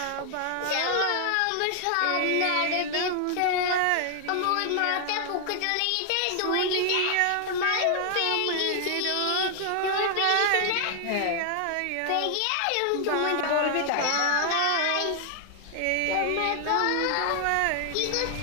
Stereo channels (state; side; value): different; both; correlation 0.00